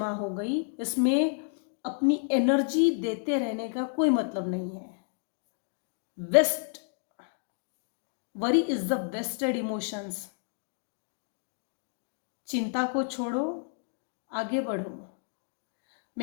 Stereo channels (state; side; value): silent; right; digital silence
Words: हो गई, इसमें अपनी एनर्जी देते रहने का कोई मतलब नहीं है। Waste worry is the wasted emotions. चिंता को छोड़ो, आगे बढ़ो।